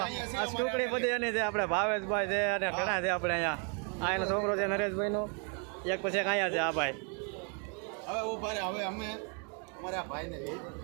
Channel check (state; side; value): quieter; left; 38.0 dB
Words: ટુકડી બધી એની છે, આપણે ભાવેશભાઈ છે અને ઘણા છે આપણે અહીંયા. આ એનો છોકરો છે નરેશભાઈનો, એક પછી એક અહીંયા છે આ ભાઈ. હવે ઉભા રહે. હવે અમે અમારા ભાઈને